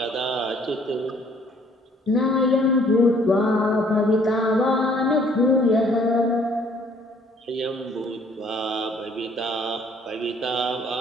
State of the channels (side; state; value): both; normal; correlation 0.60